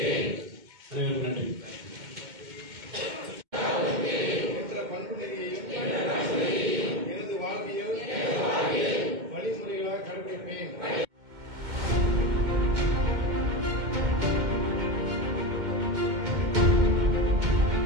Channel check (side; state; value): left; late; 2.1 ms